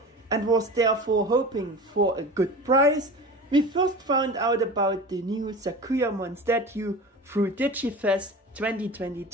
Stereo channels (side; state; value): both; normal; correlation 0.34